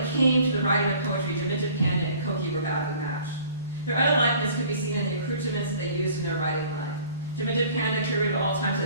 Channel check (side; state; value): both; inverted; correlation -0.51